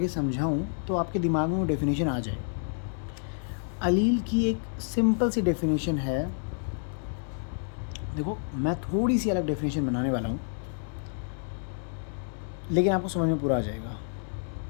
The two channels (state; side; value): silent; right; 58 dB below the other